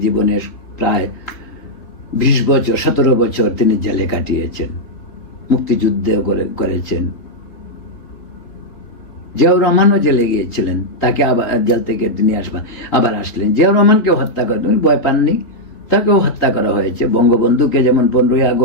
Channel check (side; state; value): right; late; 3.9 ms